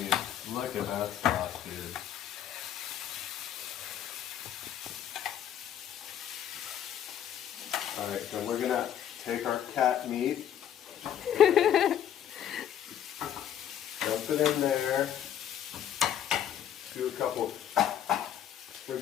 look at that sauce, dude. Alright, so we're gonna take our cat meat, dump it in there, do a couple,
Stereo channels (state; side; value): quieter; right; 10.1 dB